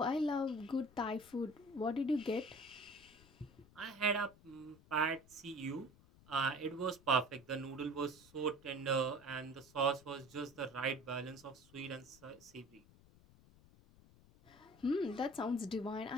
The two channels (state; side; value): noise; left; rumble, 24 dB below the sound